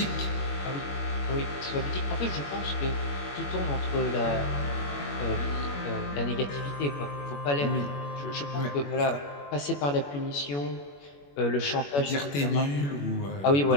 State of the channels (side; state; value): right; late; 21 ms